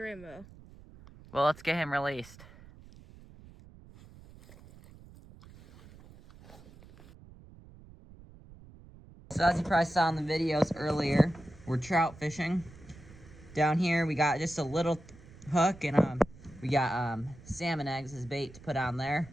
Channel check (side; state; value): right; noise; rumble, 21 dB below the sound